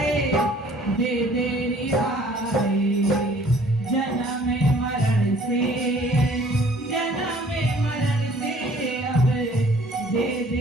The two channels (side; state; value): both; normal; correlation 0.56